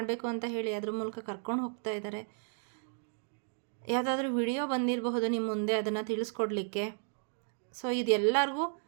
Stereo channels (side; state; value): left; silent; digital silence